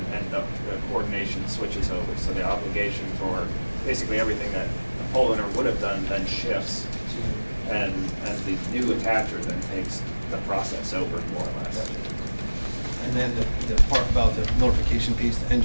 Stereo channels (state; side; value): inverted; both; correlation -1.00